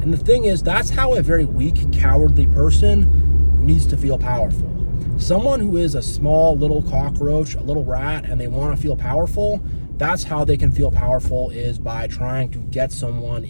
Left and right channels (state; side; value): inverted; both; correlation -1.00